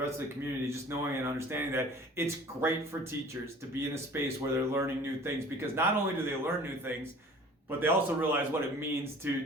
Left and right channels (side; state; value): both; normal; correlation 0.47